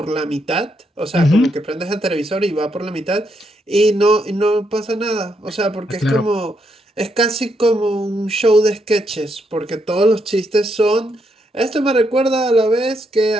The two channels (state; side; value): normal; both; correlation 0.78